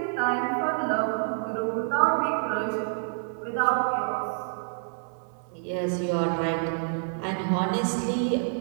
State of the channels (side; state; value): left; silent; 57 dB below the other